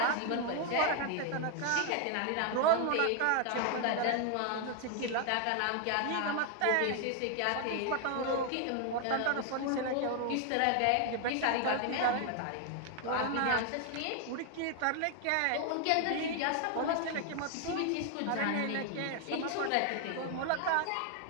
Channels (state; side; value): different; both; correlation 0.00